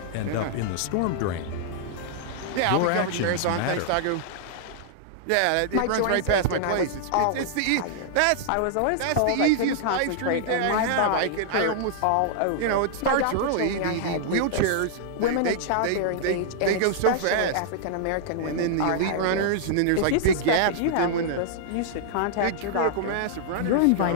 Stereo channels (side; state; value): both; different; correlation -0.01